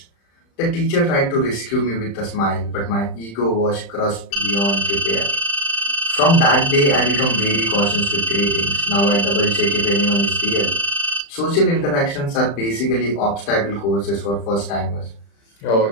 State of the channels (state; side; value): late; right; 35 ms